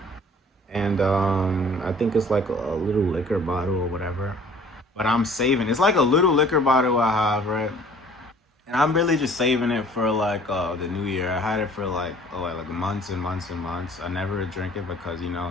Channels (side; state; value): both; normal; correlation 0.52